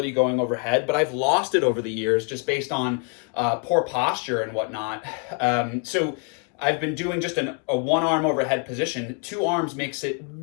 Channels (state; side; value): quieter; right; 37.4 dB